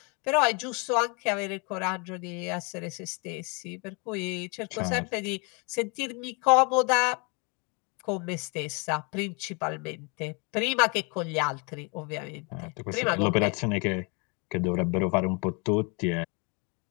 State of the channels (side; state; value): right; quieter; 32.6 dB